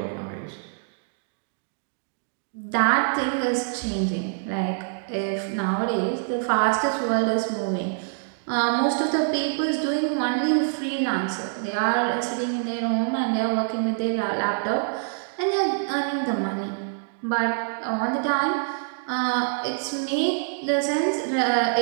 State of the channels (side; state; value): left; silent; digital silence